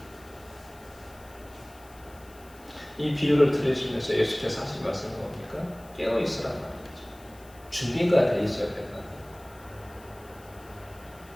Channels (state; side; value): noise; left; hiss, 24 dB below the sound